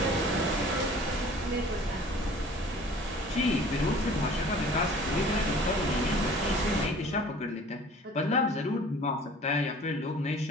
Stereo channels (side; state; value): both; normal; correlation 0.48